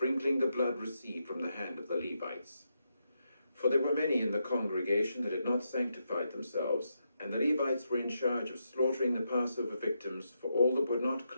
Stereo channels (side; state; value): both; inverted; correlation -0.83